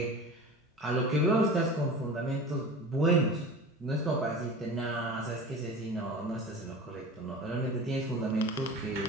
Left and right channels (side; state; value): both; normal; correlation 0.35